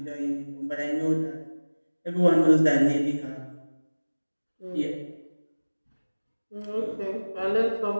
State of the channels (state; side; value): inverted; both; correlation -1.00